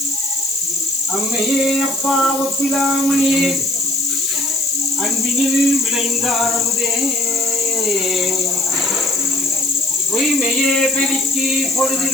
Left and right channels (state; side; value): noise; left; hiss, 7 dB below the sound